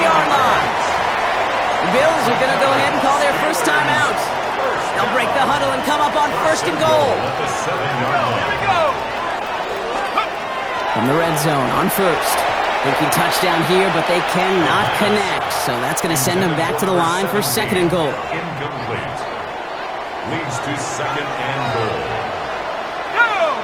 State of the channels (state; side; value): identical; both; correlation 1.00